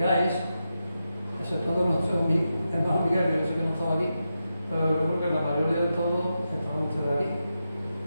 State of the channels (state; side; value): inverted; both; correlation -0.88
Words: exceptuando nuestro hermano Miguel, que yo sé que no estaba aquí, pero yo creo que la mayoría de todos estaban ustedes aquí.